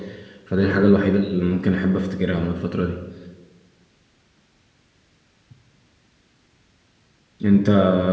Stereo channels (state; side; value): identical; both; correlation 1.00